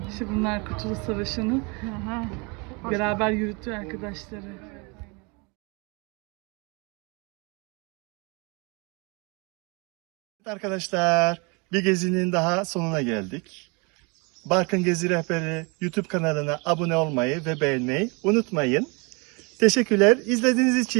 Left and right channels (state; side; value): quieter; left; 30.1 dB